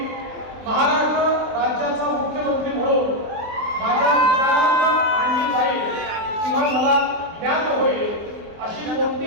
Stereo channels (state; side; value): late; left; 24 ms